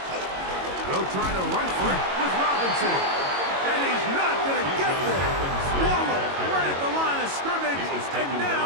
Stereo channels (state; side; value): late; left; 22 ms